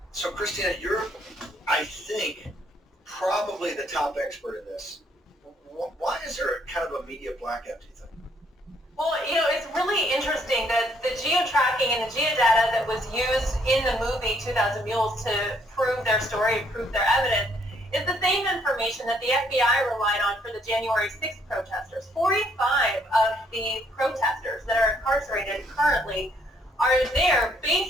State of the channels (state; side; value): normal; both; correlation 0.68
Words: So Christina, you're, I think, probably the top expert in this. Why is there kind of a media blackout, do you think? Well, it's really interesting that the geo-tracking and the geodata that was used in the movie 2,000 Mules to prove their story, prove their evidence, is the same information that the FBI relied on for the January 6th protesters. 45 of the protesters that are incarcerated currently are there